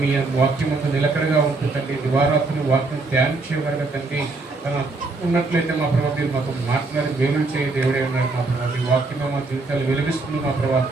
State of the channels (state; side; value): quieter; left; 3.5 dB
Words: మీ వాక్యం అంతా నిలకడగా ఉంటుందండి. దివారాత్రులు వాక్యం ధ్యానించేవారుగా తండ్రి ఉన్నట్లయితే మా ప్రభావ మీరు మాకు మాట్లాడి వేలు చేయ దేవుడే ఉన్నారు మా ప్రభావ. మీ వాక్యమే మా జీవితాలు వెలిగిస్తుంది మా ప్రభావ.